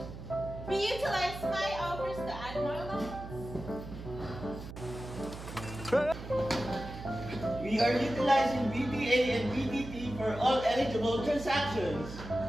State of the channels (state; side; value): noise; right; hum, 11 dB below the sound